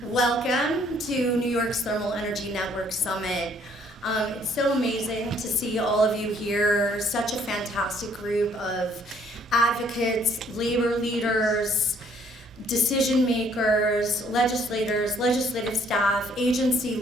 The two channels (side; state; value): both; normal; correlation 0.63